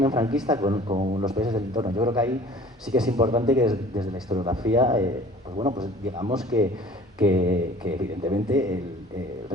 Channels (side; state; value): both; normal; correlation 0.47